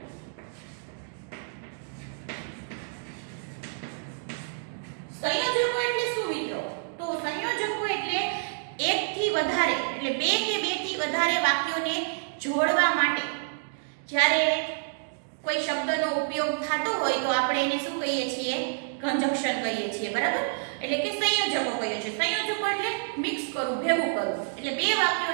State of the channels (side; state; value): left; silent; digital silence